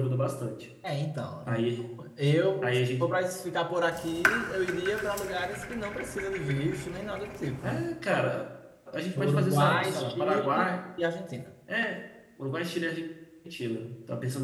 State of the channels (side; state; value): both; identical; correlation 1.00